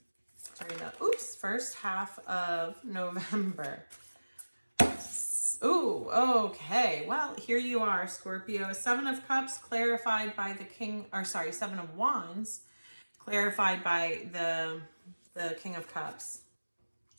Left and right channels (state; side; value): inverted; both; correlation -1.00